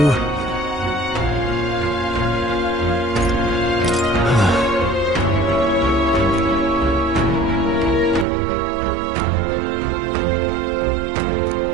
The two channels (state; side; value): drops out; left; at 8.2 s